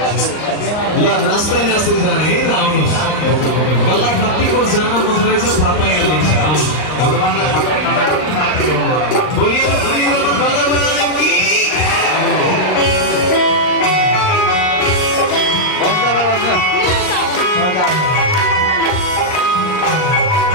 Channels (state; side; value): late; right; 39 ms